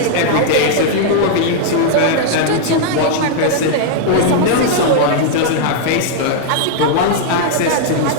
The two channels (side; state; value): both; different; correlation -0.01